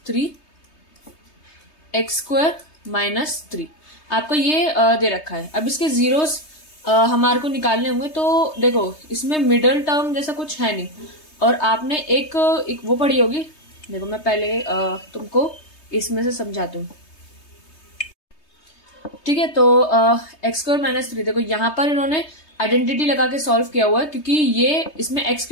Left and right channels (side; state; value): right; late; 3.2 ms